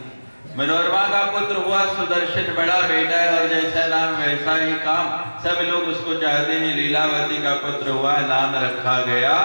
मनोरमा का पुत्र हुआ सुदर्शन, बड़ा बेटा है और जैसा नाम वैसा ही काम, सब लोग उसको चाहते हैं। लीलावती का पुत्र हुआ, नाम रखा गया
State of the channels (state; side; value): inverted; both; correlation -1.00